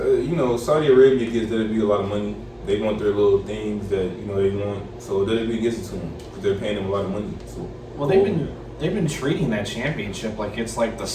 Saudi Arabia gives WWE a lot of money. They want their little things that, they want, so WWE gives it to them because they're paying them a lot of money. So, well, they've been treating that championship like it's like the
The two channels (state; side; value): identical; both; correlation 1.00